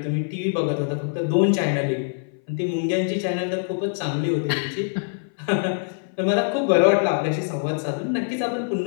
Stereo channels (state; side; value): silent; right; 59 dB below the other